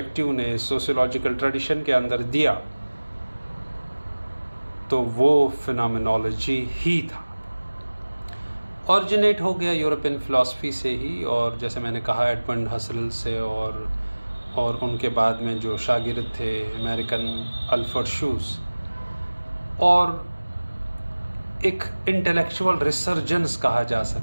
ने सोशियोलॉजिकल ट्रेडिशन के अंदर दिया तो वो फिनोमेनोलॉजी ही था। ऑरिजिनेट हो गया यूरोपियन फ़िलासफ़ी से ही और जैसे मैंने कहा एडमंड हसरल से और उनके बाद में जो शागिर्द थे अमेरिकन एल्फ्रेड शूज, और एक इंटेलेक्चुअल रिसर्जेंस कहा जा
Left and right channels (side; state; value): both; inverted; correlation -1.00